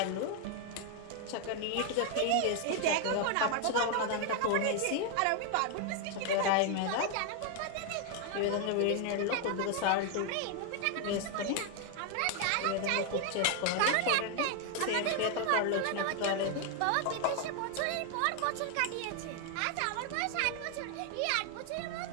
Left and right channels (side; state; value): both; different; correlation 0.00